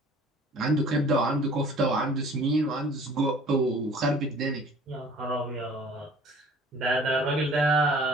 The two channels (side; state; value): both; normal; correlation 0.50